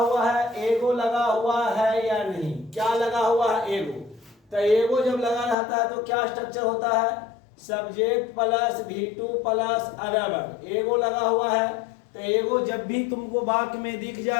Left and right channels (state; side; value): drops out; right; at 5.6 s